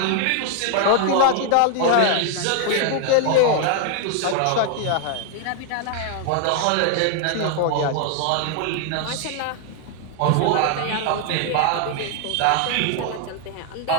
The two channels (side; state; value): both; different; correlation 0.00